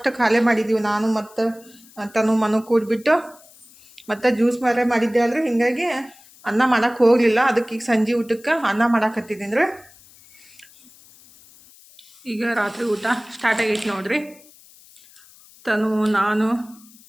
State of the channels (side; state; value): left; noise; hiss, 25 dB below the sound